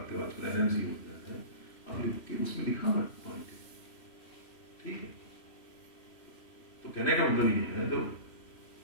हो, आजकल एनएमसी हो जाता है, आप उसमें लिखा हुआ पॉइंट, ठीक है। तो कहने का मतलब ये है, तो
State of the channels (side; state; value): right; late; 3.1 ms